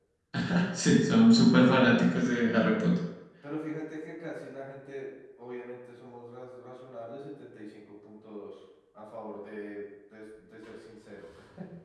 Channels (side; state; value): both; identical; correlation 1.00